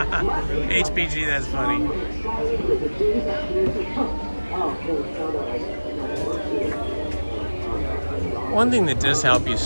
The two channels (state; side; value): inverted; both; correlation -1.00